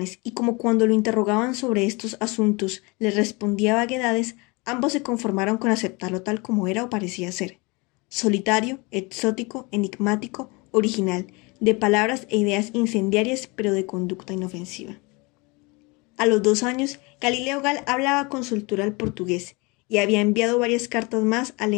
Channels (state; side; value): quieter; right; 27.1 dB